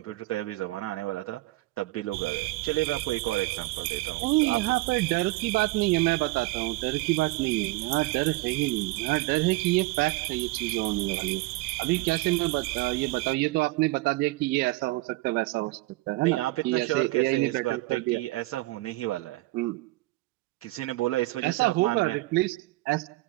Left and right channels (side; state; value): left; quieter; 20.3 dB